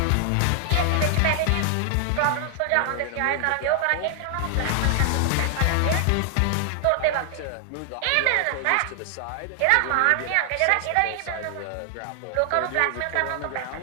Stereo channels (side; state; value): both; different; correlation 0.00